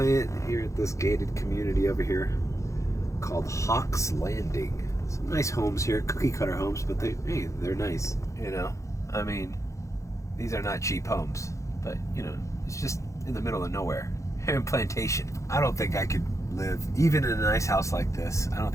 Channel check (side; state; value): right; late; 0.15 ms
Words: here at this gated community over here called Hawks Landing. Some nice homes here, cookie cutter homes, but they're nice. You know, I mean, these are not cheap homes, but you know, it's just in the middle of nowhere. Here in Plantation. I don't think I could live, even in a nice house like this, I don't